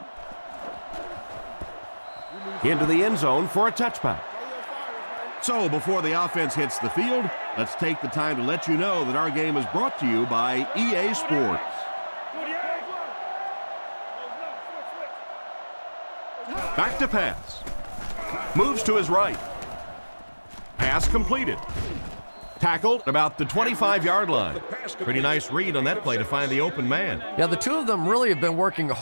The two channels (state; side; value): inverted; both; correlation -1.00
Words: into the end zone for a touchback. So before the offense hits the field, let's take the time to let you know that our game is brought to you by EA Sports. Back to pass. Moves to his right. Pass completed. Tackled at about the 25-yard line. Pretty nice read on that play to find the open man. Yeah, the two of them really have been working